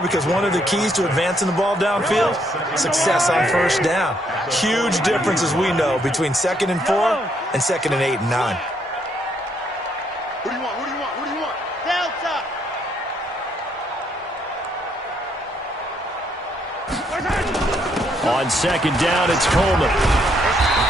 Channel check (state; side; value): normal; both; correlation 0.72